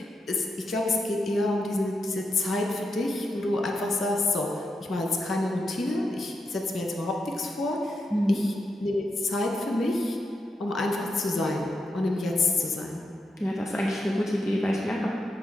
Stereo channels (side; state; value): both; normal; correlation 0.85